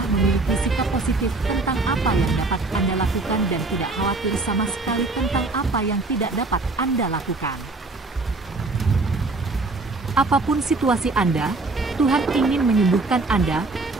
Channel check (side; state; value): left; quieter; 3.4 dB